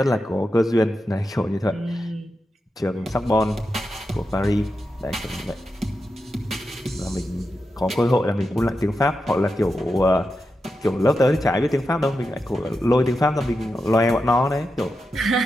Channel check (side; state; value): both; normal; correlation 0.88